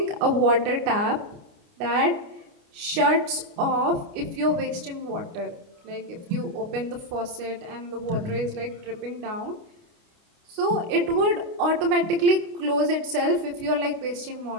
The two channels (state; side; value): late; left; 29 ms